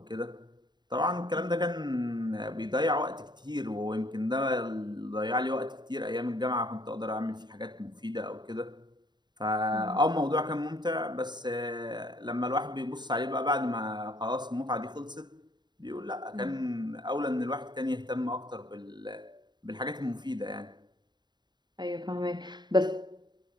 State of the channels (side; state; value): left; late; 0.21 ms